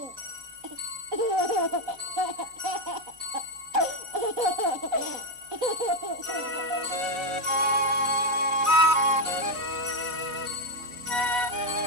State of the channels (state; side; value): late; left; 4.1 ms